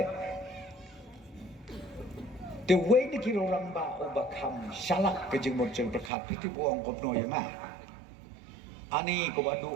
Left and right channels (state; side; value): drops out; left; at 6.1 s